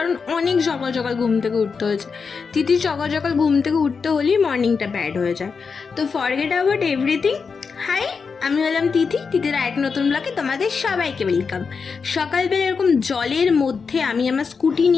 অনেক সকাল সকাল ঘুম থেকে উঠতে হয়েছে। তিথির সকাল সকাল ঘুম থেকে উঠতে হলেই মর্নিংটা ব্যাড হয়ে যায়। তো ফরগেট অ্যাবাউট এভরিথিং। হাই, আমি হলাম তিথি। তিথির এক নতুন ব্লগে তোমাদের সবাইকে ওয়েলকাম। সকালবেলা এরকম জলের মধ্যে আমি আমার স্কুটি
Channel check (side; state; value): right; quieter; 5.4 dB